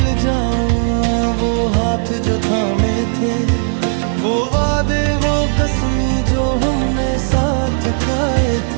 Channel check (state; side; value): silent; left; digital silence